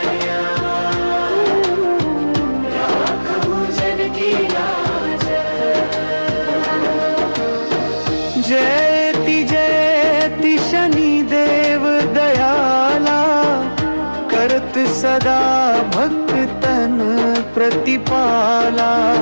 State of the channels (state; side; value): inverted; both; correlation -1.00